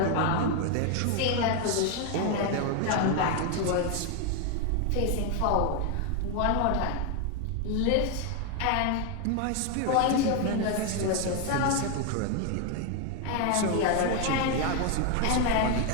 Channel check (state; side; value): different; both; correlation 0.01